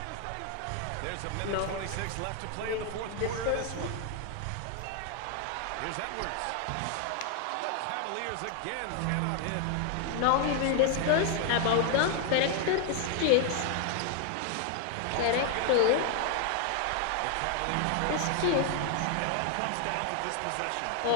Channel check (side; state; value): both; different; correlation 0.00